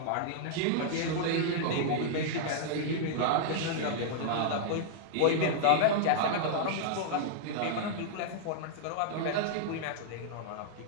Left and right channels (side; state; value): both; different; correlation -0.01